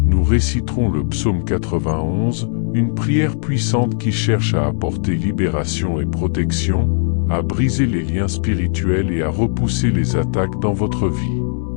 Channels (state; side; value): silent; right; 65 dB below the other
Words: nous réciterons le psaume 91, une prière puissante qui cherche à apporter libération et protection, à briser les liens spirituels et à repousser les attaques dans votre vie.